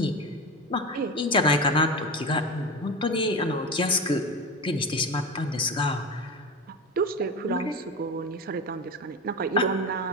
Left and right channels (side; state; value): both; normal; correlation 0.23